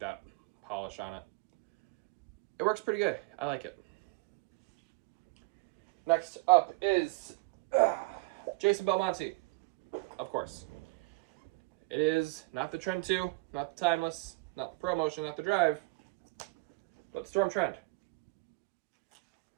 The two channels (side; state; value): left; quieter; 26.2 dB